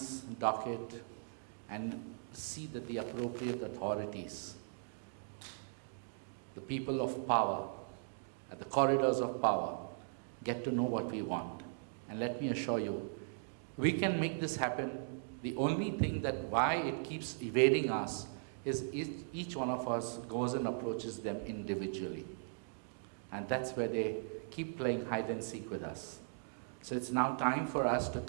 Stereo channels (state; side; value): silent; left; digital silence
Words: docket and see that the appropriate authorities, the people of power, at the corridors of power, get to know what we want. And let me assure you, we can make this happen. The only thing that why it keeps evading us is each one of us goes and approaches them individually. And that's where they keep playing hide and seek with us. So it's now time for us to